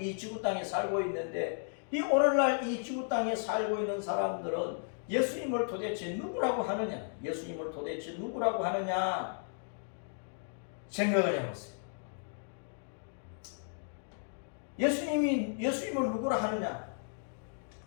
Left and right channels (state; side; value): silent; right; digital silence